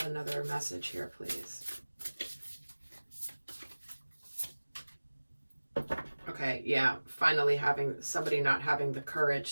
another message here, please. Okay, yeah, finally having somebody not having the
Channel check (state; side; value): inverted; both; correlation -1.00